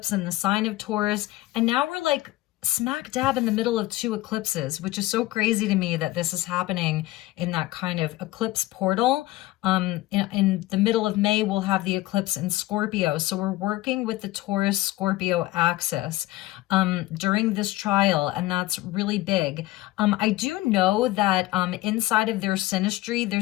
in the sign of Taurus. And now we're like smack dab in the middle of 2 eclipses, which is so crazy to me that this is happening in that kind of eclipse portal. In the middle of May, we'll have the eclipse in Scorpio. So we're working with the Taurus-Scorpio axis during this trial, and that's really big. I do know that inside of their synastry,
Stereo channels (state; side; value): quieter; right; 18.0 dB